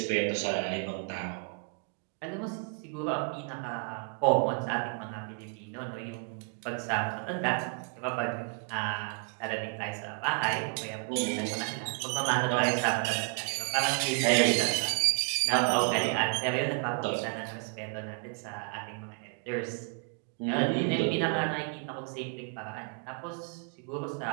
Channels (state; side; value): quieter; left; 38.7 dB